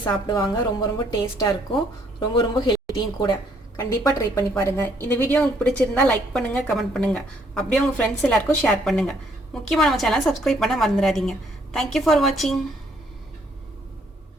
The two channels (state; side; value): normal; both; correlation 0.67